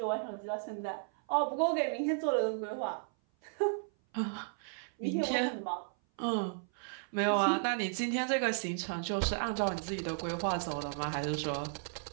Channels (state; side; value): silent; left; 55 dB below the other